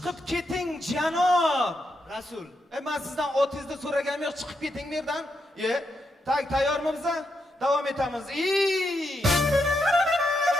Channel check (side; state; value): both; normal; correlation 0.82